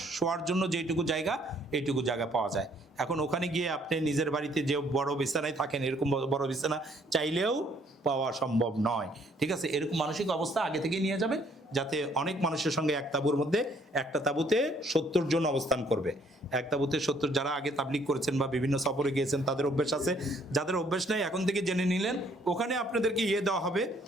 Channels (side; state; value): both; normal; correlation 0.64